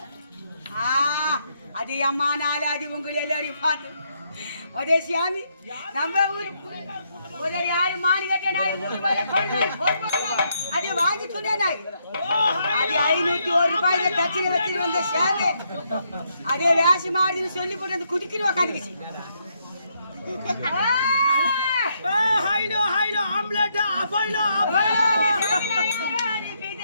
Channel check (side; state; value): both; inverted; correlation -0.76